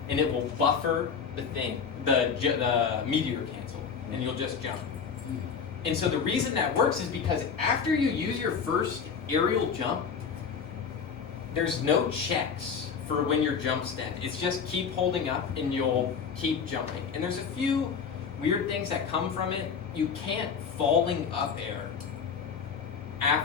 and it will buffer the thing, the meteor cancel, and you'll just jump. And so the reason that works is because after you use your first aerial jump, there's no checks for when your jump's dead. It's just keep holding up and you'll keep jumping. And there's a few weird things that come from it. You can't falling up air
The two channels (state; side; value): quieter; right; 6.3 dB